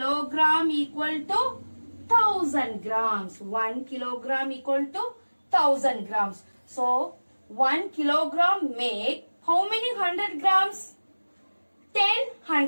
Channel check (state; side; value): inverted; both; correlation -1.00